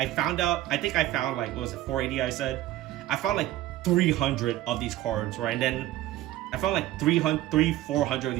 found like, what was it, 480? I said I found like 300 of these cards, right? And then I found like 400 of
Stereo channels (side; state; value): left; quieter; 15.0 dB